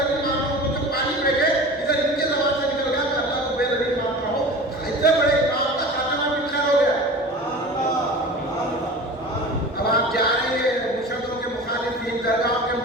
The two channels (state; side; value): normal; both; correlation 0.36